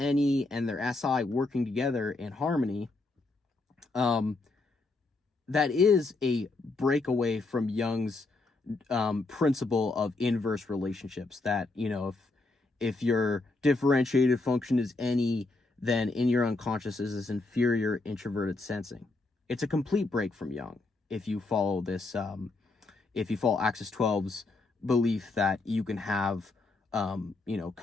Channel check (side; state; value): right; quieter; 3.3 dB